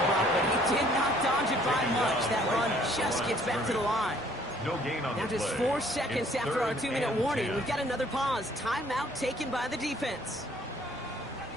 block, but he did not dodge it by much. That run just gets back to the line. No gain on Now the just play. 4 seconds It's after our 3rd 2-minute and warning. 10. We've got another pause. Timeout taken by the defense.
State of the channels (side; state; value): both; normal; correlation 0.60